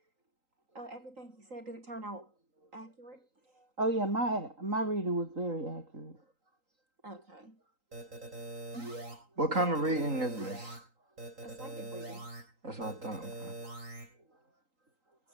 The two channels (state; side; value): late; left; 3.8 ms